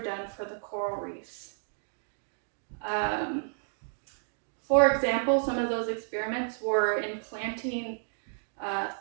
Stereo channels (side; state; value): left; silent; digital silence